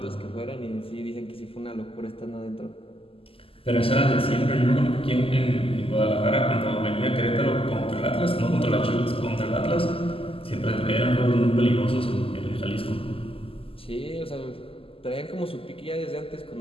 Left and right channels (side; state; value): right; late; 0.26 ms